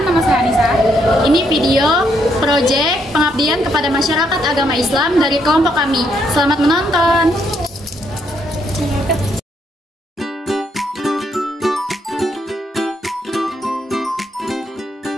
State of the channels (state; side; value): normal; both; correlation 0.74